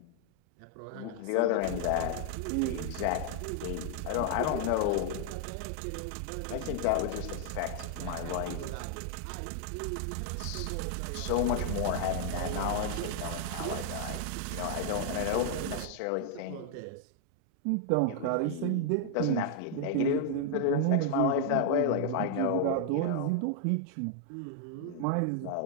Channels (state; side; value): different; both; correlation 0.00